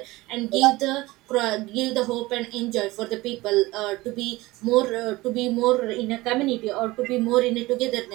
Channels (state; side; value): quieter; left; 20.0 dB